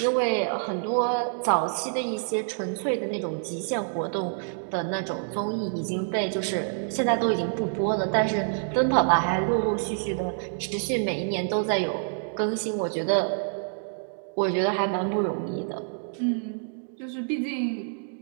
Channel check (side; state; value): left; silent; digital silence